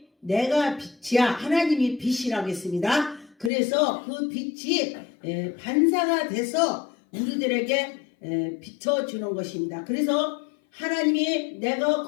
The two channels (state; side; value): drops out; right; at 3.5 s